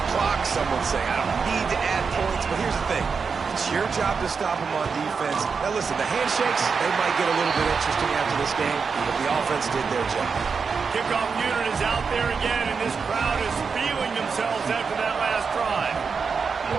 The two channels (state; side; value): quieter; left; 5.4 dB